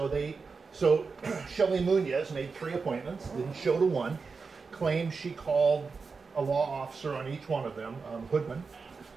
Shelley Munoz made 3 appointments, didn't show to one, claims she called a law officer on each one of them, Hoodman,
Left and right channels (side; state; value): left; quieter; 4.8 dB